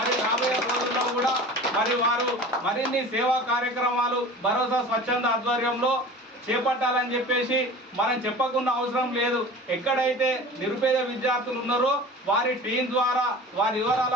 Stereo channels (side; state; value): both; normal; correlation 0.38